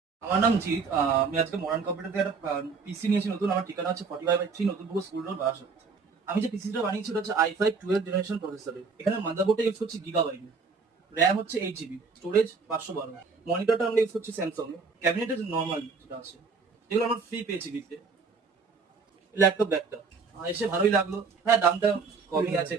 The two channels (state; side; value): quieter; left; 4.9 dB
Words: আমার নাম জিৎ। আমি আজকে মডার্ন কম্পিউটার থেকে একটা পিসি নিয়েছি নতুন। আমার ঠিকানা হচ্ছে 45/3 নতুনপুর স্কুল রোড, বারাসাত। আমি যে পিসিটা বানিয়েছি ওটা হচ্ছে i5 12 জেনারেশন প্রসেসরের। এখানে মাদারবোর্ডটা ইউজ করছি গিগাবাইট, র্যাম হচ্ছে 8 জিবি, স্টোরেজ 512। মনিটরটা আমরা ইউজ করছি স্যামসাং এর। ক্যাবিনেটের নর্মাল যেটা আছে, যেগুলো আমরা ফ্রি পেয়েছি দিতে। ল্যাপটপ ব্যাগটা এসে ভালোই লাগলো। হ্যাঁ, দামটা কমই আছে